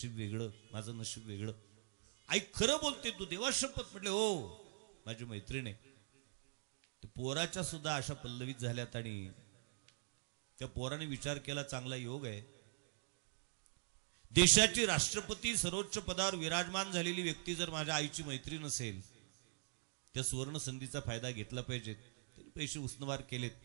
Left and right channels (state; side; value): silent; left; digital silence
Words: वेगळं, माझं नशीब वेगळं. आई खरं बोलते तू? देवा शपथ. म्हटले हो, माझी मैत्रीण आहे. पोराच्या सुद्धा अशा पल्लवीत झाल्यात. आणि त्या पोराने विचार केला, चांगला योग आहे, देशाची राष्ट्रपती सर्वोच्च पदावर विराजमान झालेली व्यक्ती जर माझ्या आईची मैत्रीण असेल, त्या सुवर्ण संधीचा फायदा घेतला पाहिजे. त्यांनी पैसे उसनवार केलेत,